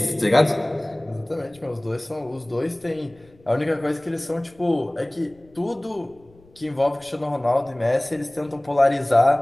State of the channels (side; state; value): left; noise; rumble, 28 dB below the sound